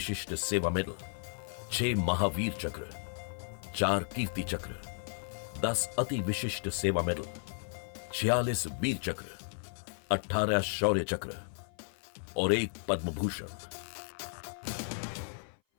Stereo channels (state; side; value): silent; right; 55 dB below the other